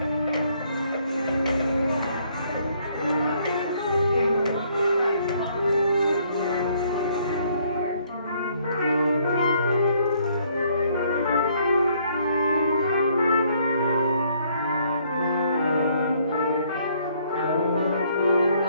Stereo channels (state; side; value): inverted; both; correlation -0.66